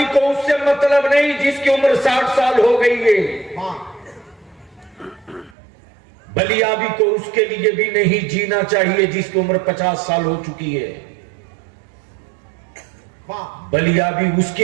को उससे मतलब नहीं जिसकी उम्र 60 साल हो गई है। वाह, बलियाबी को उसके लिए भी नहीं जीना चाहिए जिसकी उम्र 50 साल हो चुकी है। वाह बलिया भी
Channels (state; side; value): drops out; left; at 5.6 s